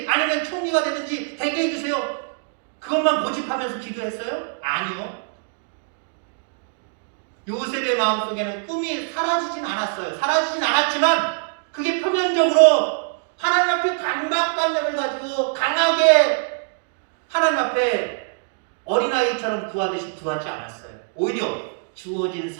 아니면 총리가 되든지 되게 해주세요. 그것만 고집하면서 기도했어요? 아니요. 요셉의 마음속에는 꿈이 사라지진 않았어요. 사라지진 않았지만 그게 표면적으로 하나님 앞에 강박관념을 가지고 강하게 하나님 앞에 어린아이처럼 구하듯이 구하지 않았어요. 오히려 주어진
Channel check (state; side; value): silent; left; 63 dB below the other